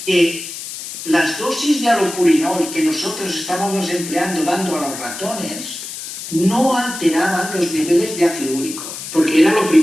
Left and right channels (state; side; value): noise; left; hiss, 9 dB below the sound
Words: que las dosis de allopurinol que nosotros estábamos empleando dando a los ratones no alteraban los niveles de ácido úrico, porque era lo